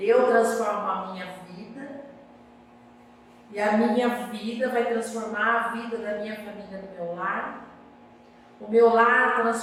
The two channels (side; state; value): both; identical; correlation 1.00